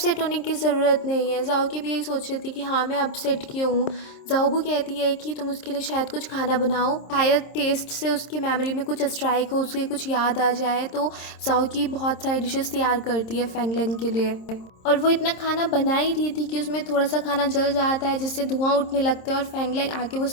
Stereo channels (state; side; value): late; right; 26 ms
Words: होने की ज़रूरत नहीं है। जाओकी भी यही सोच रही थी कि हाँ मैं अपसेट क्यों हूँ। जाओबू कहती है कि तुम उसके लिए शायद कुछ खाना बनाओ, शायद टेस्ट से उसकी मेमोरी में कुछ स्ट्राइक हो, उसके कुछ याद आ जाए। तो जाओकी बहुत सारी डिशेस तैयार करती है फेंग लैंग के लिए और वो इतना खाना बना ही रही थी कि उसमें थोड़ा सा खाना जल जाता है जिससे धुआं उठने लगता है और फेंग लैंग आके वो